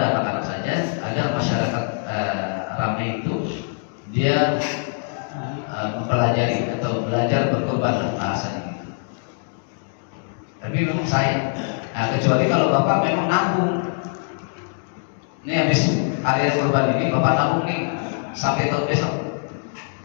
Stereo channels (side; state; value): right; silent; 63 dB below the other